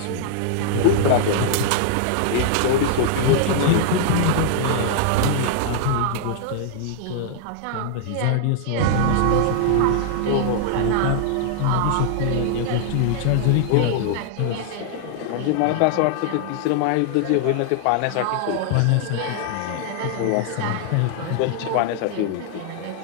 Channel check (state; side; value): different; both; correlation -0.01